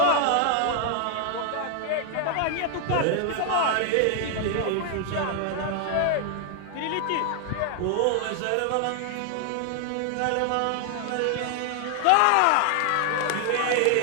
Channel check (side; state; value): both; different; correlation 0.00